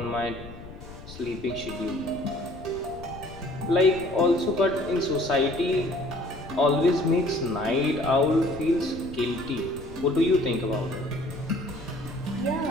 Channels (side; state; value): left; noise; rumble, 15 dB below the sound